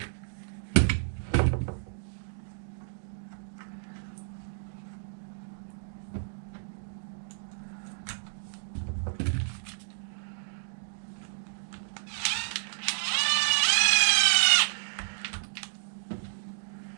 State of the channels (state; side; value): silent; left; digital silence